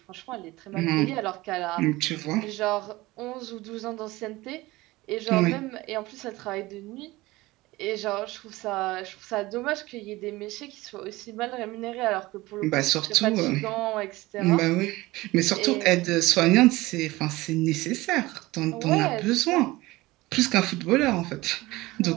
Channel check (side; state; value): left; quieter; 19.7 dB